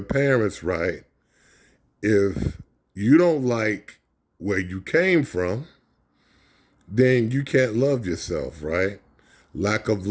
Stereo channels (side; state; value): both; identical; correlation 1.00